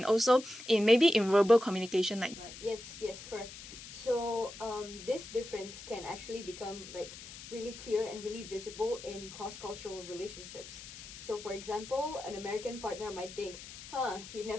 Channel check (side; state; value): left; noise; hiss, 14 dB below the sound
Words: also in maybe in verbal communication like. Right. Yes, correct. So this difference can actually become like really clear and really visible in cross-cultural relationships. So for example, an American partner might think, he